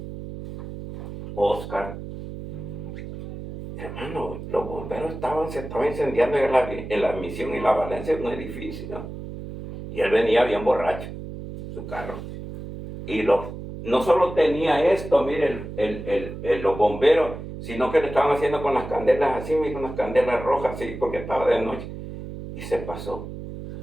Oscar, hermano, los bomberos se estaban incendiando en la Misión y la Valencia un edificio. Y él venía bien borracho, su carro. Y no solo tenía esto, mire, los bomberos, sino que le estaban haciendo con las candelas así, con las candelas rojas así, porque estaba de noche. Y se pasó.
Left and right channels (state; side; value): noise; right; hum, 10 dB below the sound